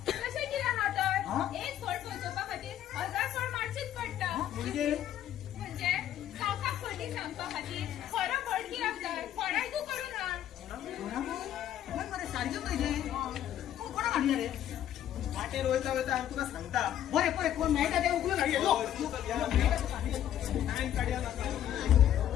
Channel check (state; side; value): quieter; right; 11.3 dB